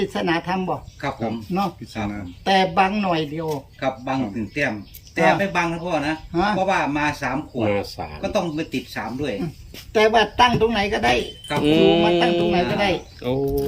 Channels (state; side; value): identical; both; correlation 1.00